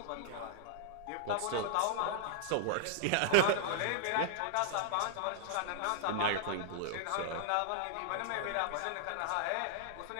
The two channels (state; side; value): different; both; correlation -0.01